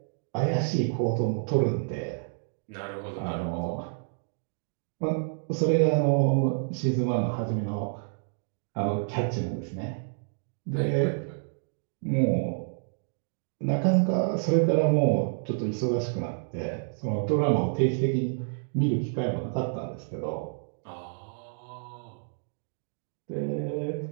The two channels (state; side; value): silent; left; digital silence